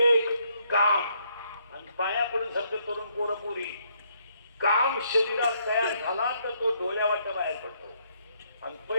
काम आणि पाया पडून सारखं तरुण पोरं पुरी काम शरीरात तयार झाला तर तो डोळ्यावाट्या बाहेर पडतो आणि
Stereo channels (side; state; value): both; inverted; correlation -0.72